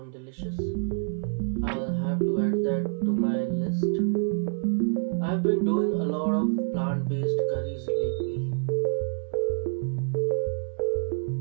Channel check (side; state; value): left; silent; 60 dB below the other